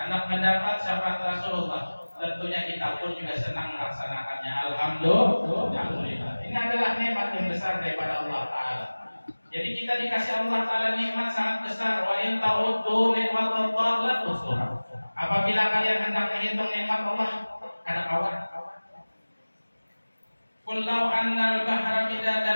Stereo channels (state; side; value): inverted; both; correlation -1.00